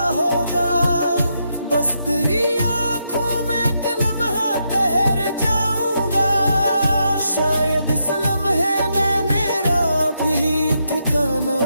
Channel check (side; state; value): both; inverted; correlation -0.81